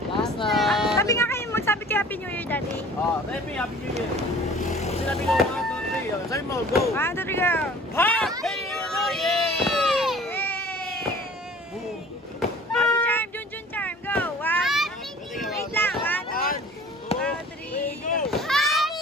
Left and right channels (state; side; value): normal; both; correlation 0.47